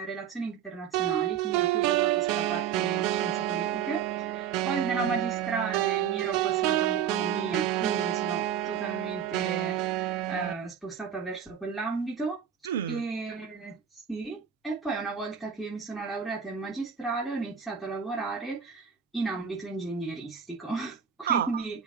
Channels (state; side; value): quieter; left; 8.2 dB